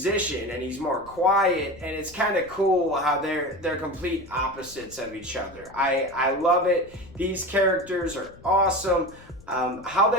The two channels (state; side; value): noise; left; rumble, 22 dB below the sound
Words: and he's more quiet, and it's kind of cool how they're complete opposites of each other. I love it. These characters are awesome. How